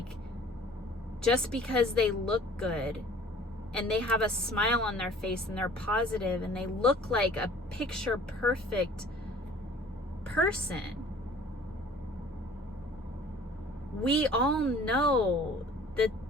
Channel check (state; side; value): normal; both; correlation 0.49